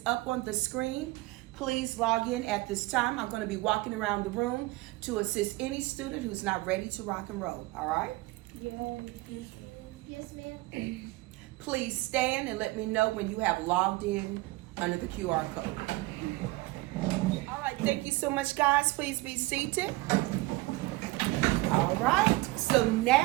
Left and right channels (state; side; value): quieter; left; 20.6 dB